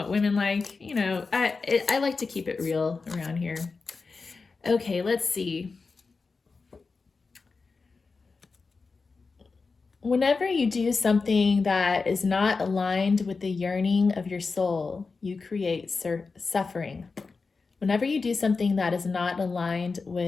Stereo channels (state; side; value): quieter; right; 4.4 dB